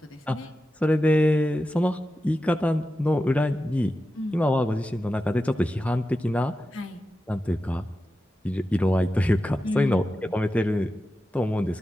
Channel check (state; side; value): normal; both; correlation 0.92